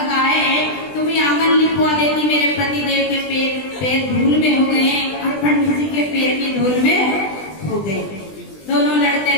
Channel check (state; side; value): late; right; 20 ms